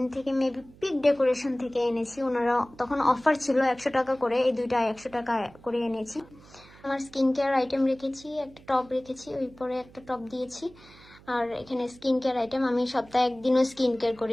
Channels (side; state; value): right; noise; hum, 23 dB below the sound